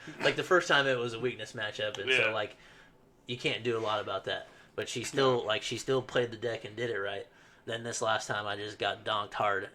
Like the first time it was a weakness matchup, and so like you can't do a lot about that. But she still played the deck and did it right. Then this last time I just got donked hard,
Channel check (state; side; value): identical; both; correlation 1.00